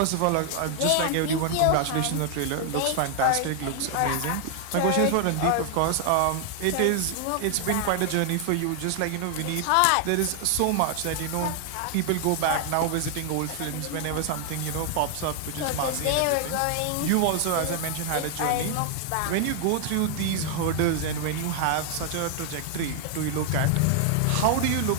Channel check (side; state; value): both; different; correlation 0.00